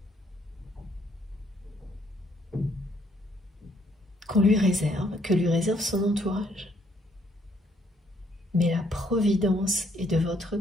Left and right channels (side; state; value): both; normal; correlation 0.68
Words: Que lui réserve son entourage. Mais la providence est de votre